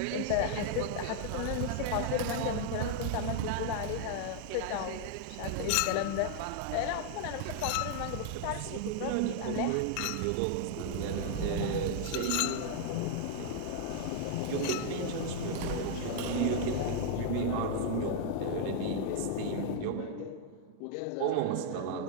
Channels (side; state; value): both; different; correlation 0.00